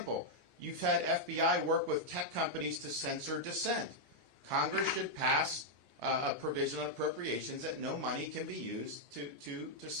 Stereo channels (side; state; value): left; late; 14 ms